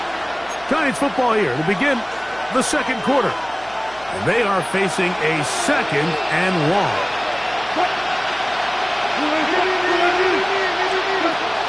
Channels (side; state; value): right; noise; hum, 25 dB below the sound